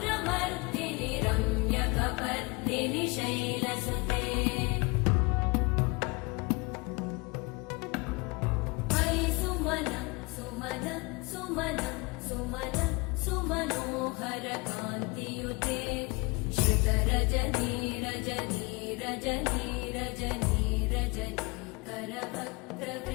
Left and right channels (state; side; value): quieter; right; 28.1 dB